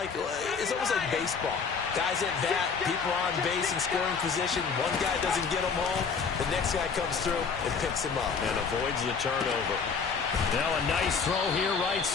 baseball. Guys at bat, people on base in scoring position. One guy doesn't get him home. The next guy comes through and picks him up. And avoids the turnover. Now a nice throw here right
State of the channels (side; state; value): right; quieter; 5.6 dB